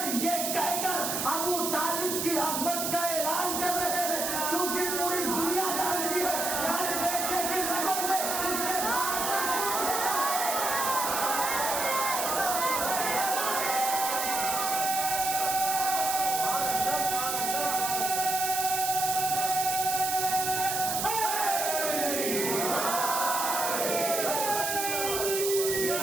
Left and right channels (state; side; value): noise; right; hiss, 1 dB below the sound